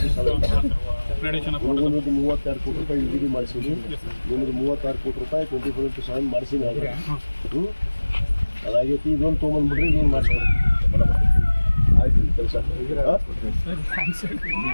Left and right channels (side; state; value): both; inverted; correlation -1.00